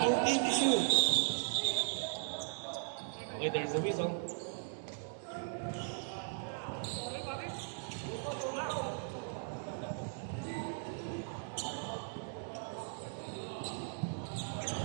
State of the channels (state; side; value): silent; left; digital silence